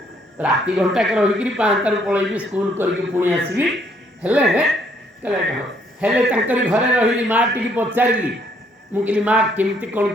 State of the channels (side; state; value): both; normal; correlation 0.67